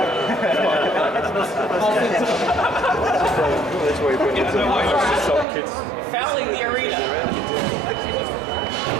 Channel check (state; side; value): drops out; left; at 5.5 s